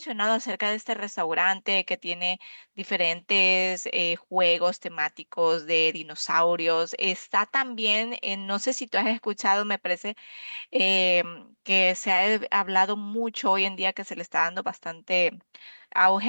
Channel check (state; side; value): inverted; both; correlation -1.00